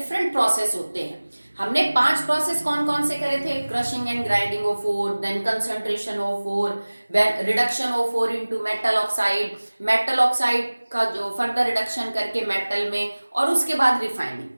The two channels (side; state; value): both; inverted; correlation -1.00